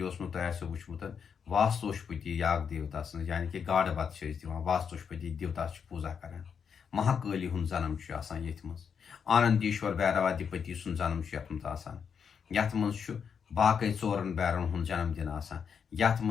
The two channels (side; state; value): right; quieter; 6.9 dB